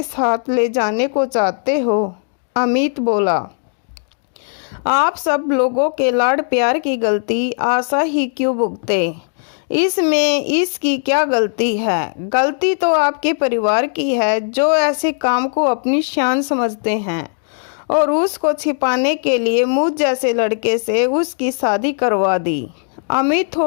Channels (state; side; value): silent; right; digital silence